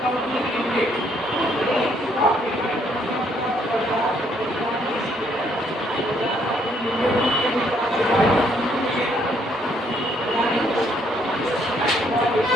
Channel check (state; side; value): normal; both; correlation 0.68